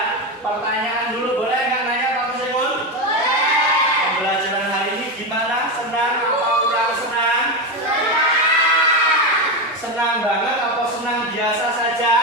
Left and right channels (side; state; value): both; normal; correlation 0.14